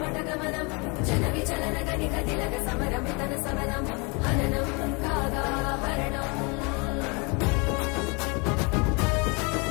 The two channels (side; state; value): right; quieter; 30.5 dB